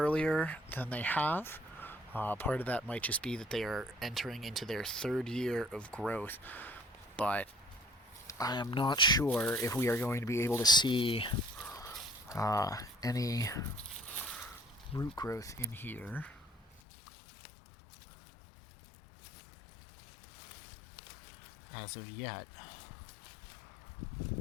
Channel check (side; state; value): right; drops out; at 16.8 s